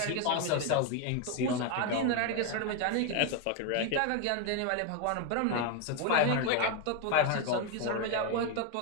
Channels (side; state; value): both; different; correlation 0.01